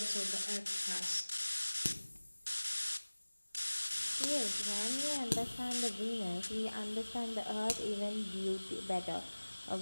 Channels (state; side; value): inverted; both; correlation -1.00